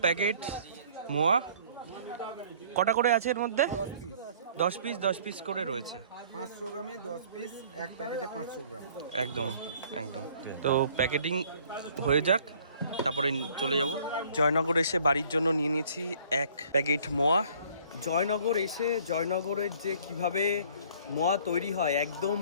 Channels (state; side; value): inverted; both; correlation -0.56